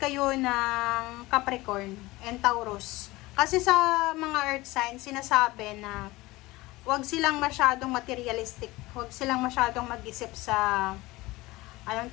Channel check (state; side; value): quieter; right; 20.2 dB